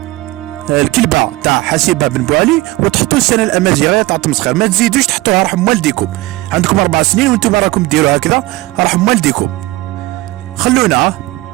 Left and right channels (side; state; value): left; quieter; 19.8 dB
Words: الكلبه تاع حسيبه بن بوعلي، وتحطوا السنه الامازيغيه تاع تمسخير. ما تزيدوش تحطوها، رحم والديكم، عندكم 4 سنين وانتم راكم ديروا هكذا، رحم والديكم. خلونا